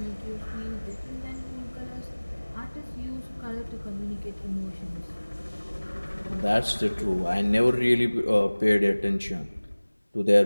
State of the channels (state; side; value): inverted; both; correlation -1.00